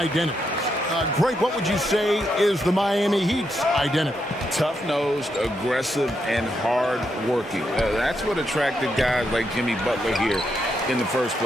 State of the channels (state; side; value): normal; both; correlation 0.81